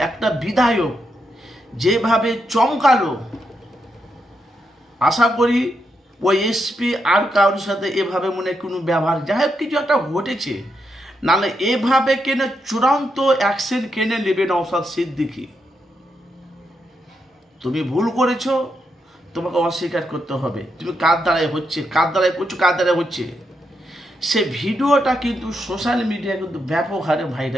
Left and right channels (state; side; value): normal; both; correlation 0.82